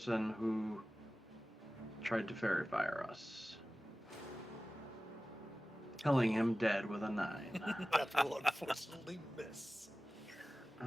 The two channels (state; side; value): normal; both; correlation 0.97